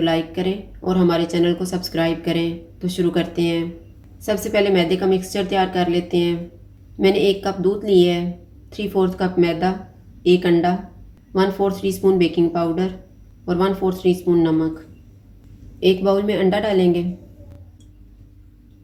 लाइक करें और हमारे चैनल को सब्सक्राइब करें। तो शुरू करते हैं। सबसे पहले मैदे का मिक्सचर तैयार कर लेते हैं। मैंने 1 कप दूध लिए है, 3/4 कप मैदा, 1 अंडा, 1/4 टीस्पून बेकिंग पाउडर और 1/4 टीस्पून नमक। एक बाउल में अंडा डालेंगे,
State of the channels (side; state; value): both; identical; correlation 1.00